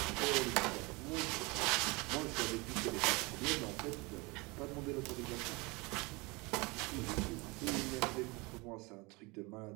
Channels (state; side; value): quieter; left; 26.0 dB